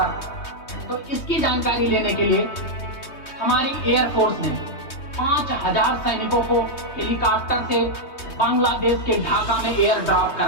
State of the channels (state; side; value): late; right; 3.2 ms